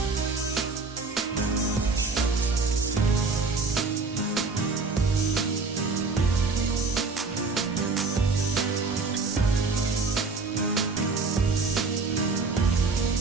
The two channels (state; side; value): quieter; left; 4.0 dB